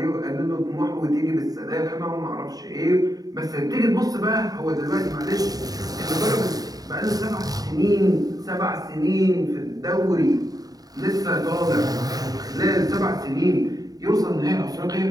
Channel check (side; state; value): left; late; 0.18 ms